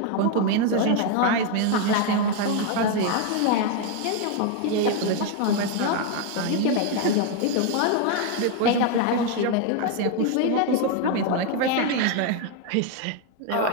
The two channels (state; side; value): different; both; correlation 0.01